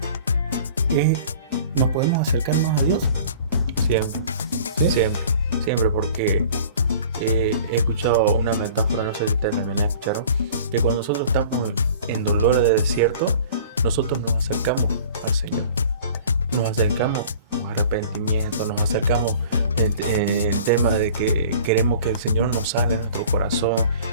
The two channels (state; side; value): inverted; both; correlation -0.46